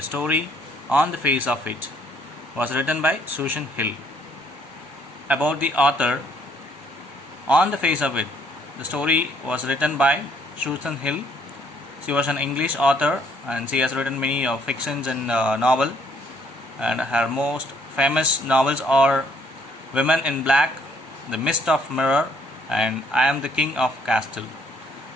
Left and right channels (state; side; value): normal; both; correlation 0.66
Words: story On the Face of It. It was written by Susan Hill. About the author, On the Face of It. The story was written by Susan Hill. She was an English author and she has written many fictions and novel. And her most famous novels are Women in Black, The Mist of Mirror, and I Am the King of Castle.